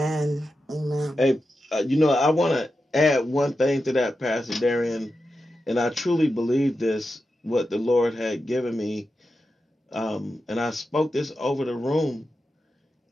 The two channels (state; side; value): normal; both; correlation 0.90